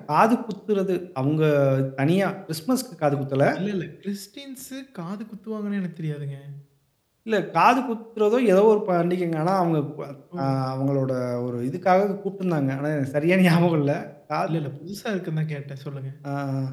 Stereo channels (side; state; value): both; identical; correlation 1.00